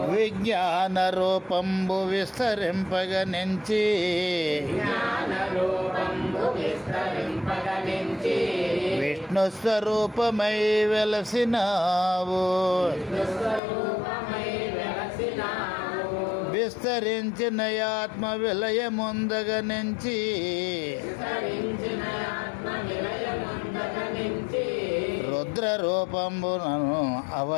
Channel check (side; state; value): right; drops out; at 13.6 s